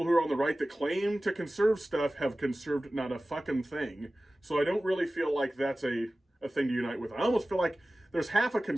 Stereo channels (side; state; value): both; normal; correlation 0.97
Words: who are on the right that claim to conserve stuff have conserved not a fucking thing. So I don't really feel like that's a thing to unite with. I almost feel like there's half a